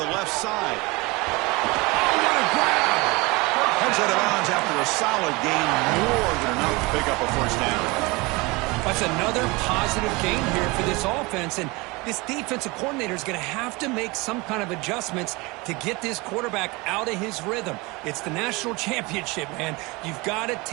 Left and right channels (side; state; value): left; quieter; 24.7 dB